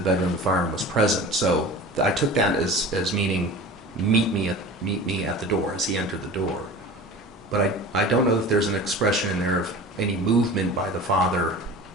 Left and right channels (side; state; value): both; normal; correlation 0.37